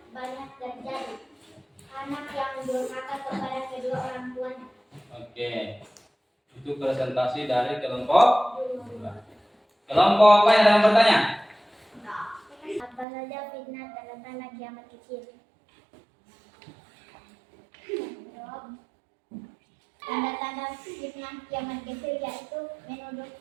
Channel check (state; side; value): drops out; left; at 13.1 s